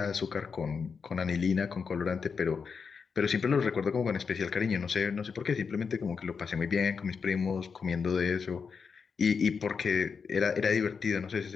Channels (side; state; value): right; quieter; 5.7 dB